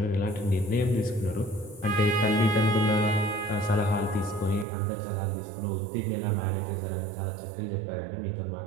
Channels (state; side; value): drops out; left; at 4.7 s